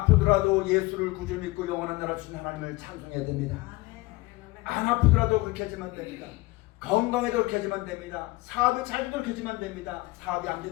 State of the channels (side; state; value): right; quieter; 21.5 dB